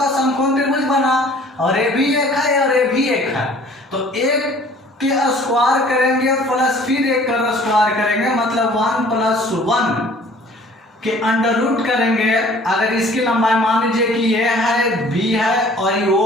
समकोण त्रिभुज बना और ये भी एक है और ये भी एक है, तो एक के स्क्वायर करेंगे प्लस फिर एक का स्क्वायर करेंगे, मतलब 1 + 1 के अंडर √ करेंगे। अगर इसकी लंबाई मान लीजिए कि ये है, बी है और ये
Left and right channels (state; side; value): normal; both; correlation 0.52